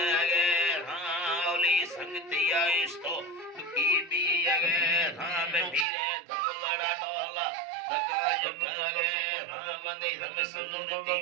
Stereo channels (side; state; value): left; drops out; at 5.9 s